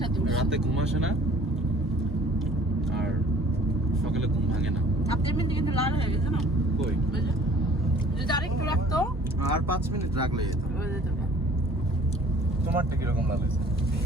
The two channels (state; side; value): normal; both; correlation 0.52